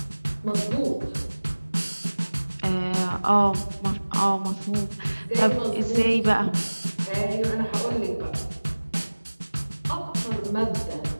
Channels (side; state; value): both; inverted; correlation -1.00